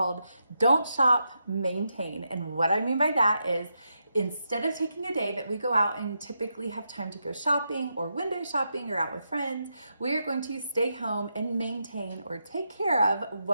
Don't Shop, Maintain. And what I mean by that is instead of taking a day that we go out and typically have time to go shopping or window shopping or out with friends, we are going to stay home and maintain or take care of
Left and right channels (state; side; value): inverted; both; correlation -0.84